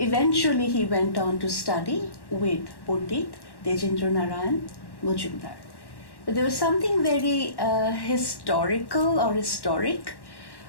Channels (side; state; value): right; late; 1.1 ms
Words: he went on to study with Pandit Tejendra Narayan Mazumdar. But there was something very historical or historic